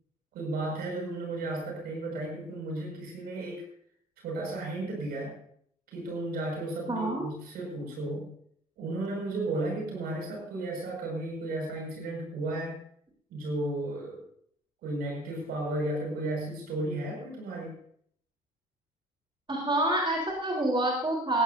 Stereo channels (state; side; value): normal; both; correlation 0.49